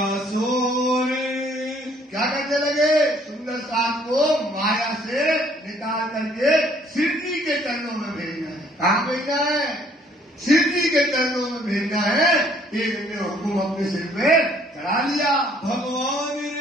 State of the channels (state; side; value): normal; both; correlation 0.62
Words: सोर, क्या करने लगे, सुंदर साथ को माया से निकाल करके सिद्धि के चरणों में भेजना है। कहाँ भेजना है, सिद्धि के चरणों में भेजना है। एक ने हुकुम अपने सिर पे चढ़ा लिया। भगवान